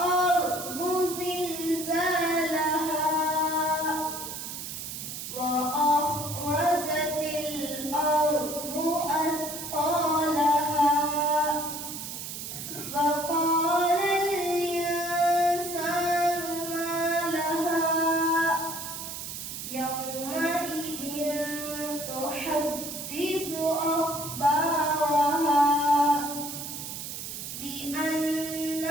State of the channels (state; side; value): noise; right; hiss, 8 dB below the sound